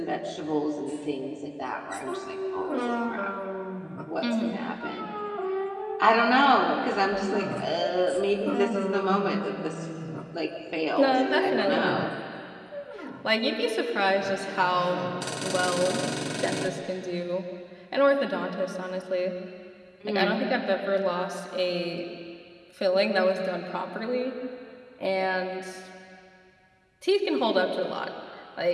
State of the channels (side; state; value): both; identical; correlation 1.00